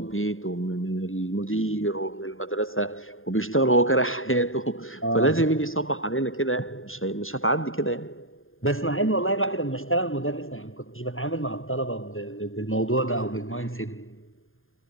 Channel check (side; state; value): right; late; 0.59 ms